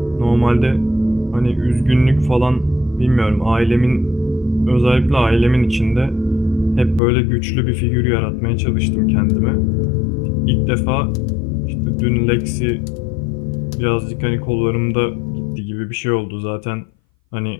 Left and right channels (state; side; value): drops out; right; at 7.0 s